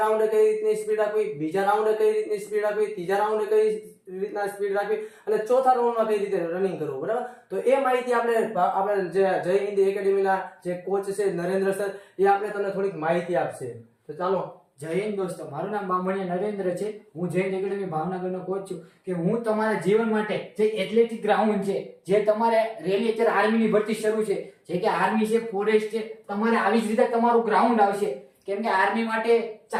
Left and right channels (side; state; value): both; identical; correlation 1.00